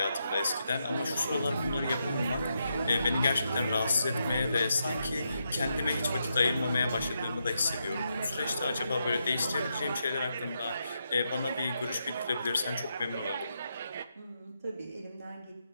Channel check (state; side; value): inverted; both; correlation -0.83